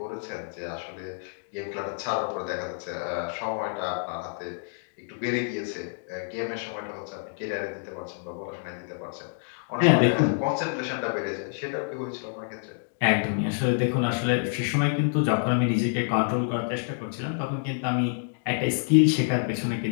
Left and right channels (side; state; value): right; silent; digital silence